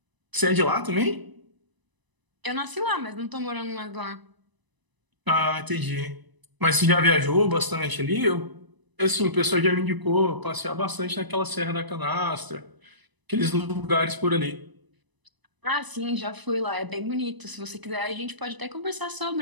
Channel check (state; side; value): late; left; 1.0 ms